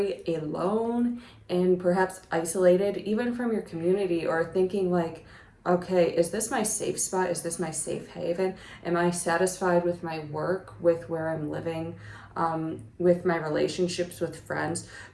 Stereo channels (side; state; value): both; identical; correlation 1.00